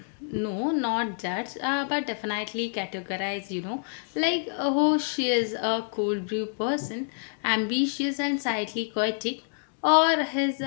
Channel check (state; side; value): silent; right; digital silence